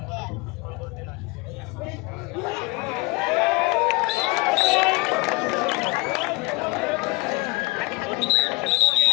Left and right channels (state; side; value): quieter; right; 25.3 dB